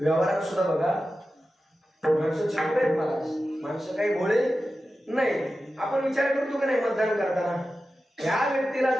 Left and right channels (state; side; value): normal; both; correlation 0.93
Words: सुद्धा बघा, माणसं चुकत आहेत महाराज, माणसं काही भोळे नाही. आपण विचार करतो की नाही मतदान करताना, या व्यक्तीला